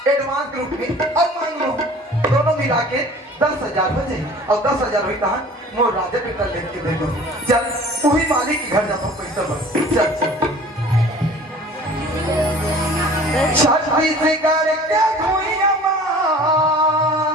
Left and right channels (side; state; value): both; normal; correlation 0.46